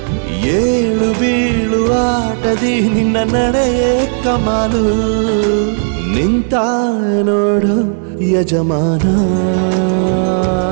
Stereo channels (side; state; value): left; silent; digital silence